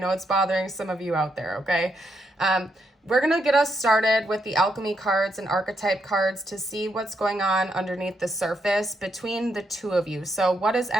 it's bothering some of you out there, okay? We're going to get us started with the alchemy cards and archetype cards to see what's going on underneath the surface between the two of you. So what is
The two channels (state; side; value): normal; both; correlation 0.79